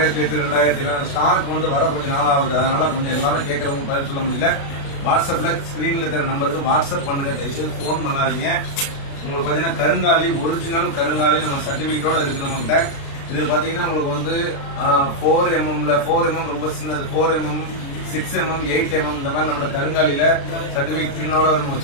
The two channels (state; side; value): late; right; 36 ms